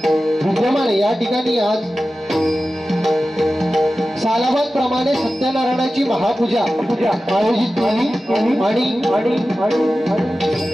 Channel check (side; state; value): both; normal; correlation 0.94